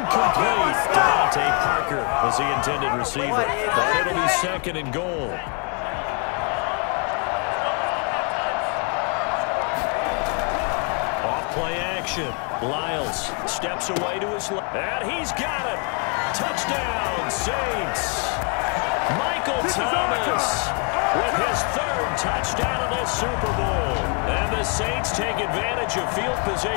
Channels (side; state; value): right; quieter; 38.3 dB